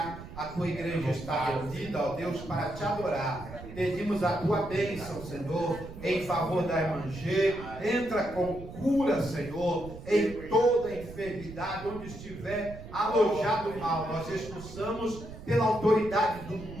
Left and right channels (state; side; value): noise; right; rumble, 13 dB below the sound